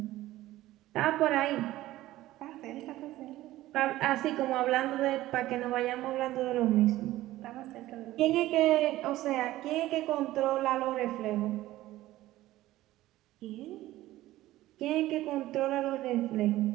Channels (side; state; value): left; quieter; 15.9 dB